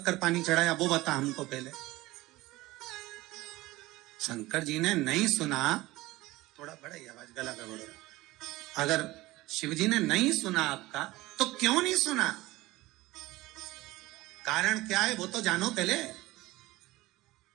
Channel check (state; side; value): quieter; left; 18.9 dB